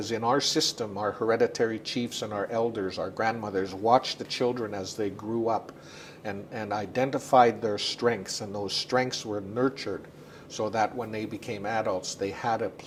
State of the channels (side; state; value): both; identical; correlation 1.00